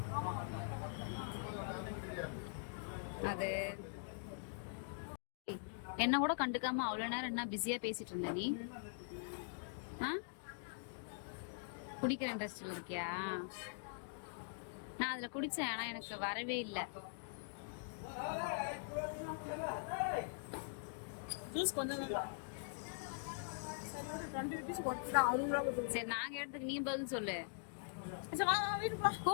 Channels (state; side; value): silent; right; digital silence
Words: அது. என்ன கூட கண்டுக்காம அவ்வளவு நேரம் என்ன பிஸியா பேசிட்டு இருந்த நீ? குடிக்கிற இன்ட்ரெஸ்ட்ல இருக்கியா? நான் அதுல குடிச்சேன், ஆனா எனக்கு வரவே இல்லை. சரி, நாங்க எடுத்துக்கு நீ பதில் சொல்லு.